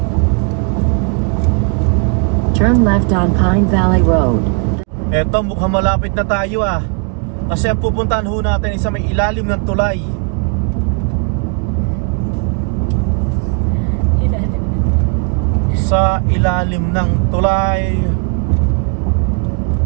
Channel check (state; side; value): quieter; left; 38.6 dB